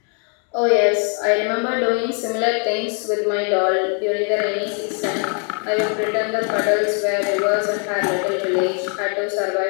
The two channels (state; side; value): quieter; right; 39.3 dB